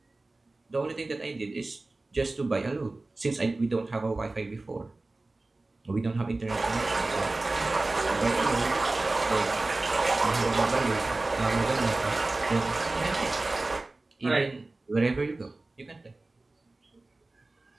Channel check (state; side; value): quieter; left; 3.1 dB